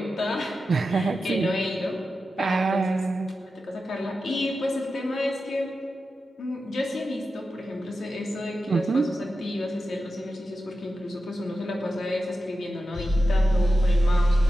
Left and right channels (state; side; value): normal; both; correlation 0.91